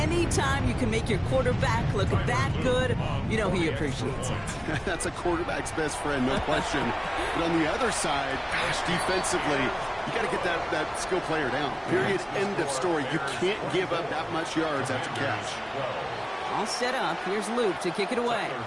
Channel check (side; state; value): both; identical; correlation 1.00